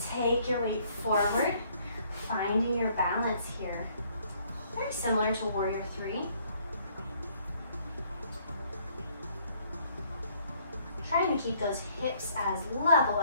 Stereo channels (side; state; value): both; inverted; correlation -0.64